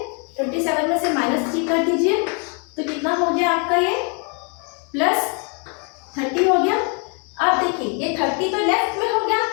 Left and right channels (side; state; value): right; quieter; 36.8 dB